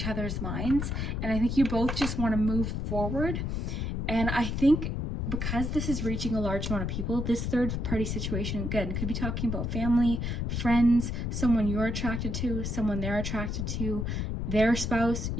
other's minds, and I think you both just want to move forward. And I think because this is reaching a large amount of people, this third party situation, again, could be talking about family, friends, someone you're attracted to, someone they're attracted to, their spouse,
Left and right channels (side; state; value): left; noise; rumble, 2 dB below the sound